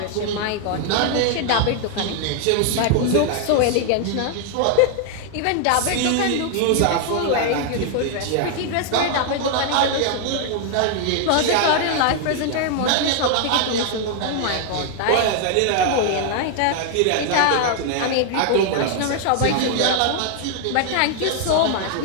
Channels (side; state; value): both; different; correlation 0.00